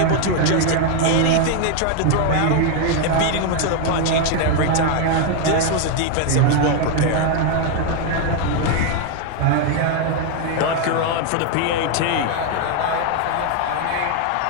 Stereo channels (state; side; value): different; both; correlation 0.01